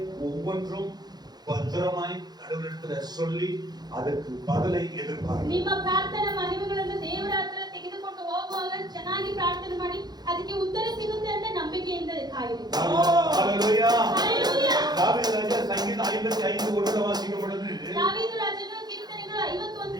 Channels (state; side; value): late; left; 0.20 ms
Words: ஒவ்வொன்றும் பத்திரமாய் கடவுளிடத்துல சொல்லி ಅದಕ್ಕೆ பதிலை எதிர்பார்க்க. ನಿಮ್ಮ ಪ್ರಾರ್ಥನಾ ಮನವಿಗಳನ್ನು ದೇವರ ಹತ್ರ ತೆಗೆದುಕೊಂಡು ಹೋಗುವಾಗ ಚೆನ್ನಾಗಿ ಪ್ರಾರ್ಥನೆ ಮಾಡಿ ಅದಕ್ಕೆ ಉತ್ತರ ಸಿಗುತ್ತೆ ಅಂತ ನಂಬಿಕೆಯಿಂದ ಕಾಯಿರಿ. ஹalleluya. ஹalleluya. தாவீது ராஜா சங்கீதம் 55 ஒன்றை வாசிக்கும் பொழுது தாவீது ರಾಜನು ಕೀರ್ತನೆಗಳು